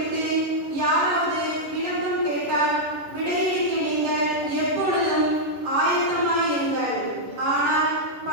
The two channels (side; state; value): left; late; 10 ms